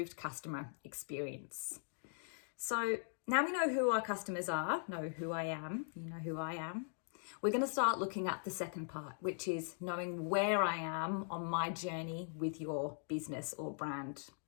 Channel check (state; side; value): silent; right; digital silence